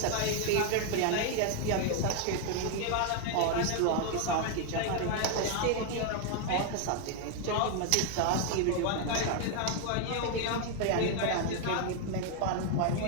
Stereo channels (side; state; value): both; different; correlation 0.01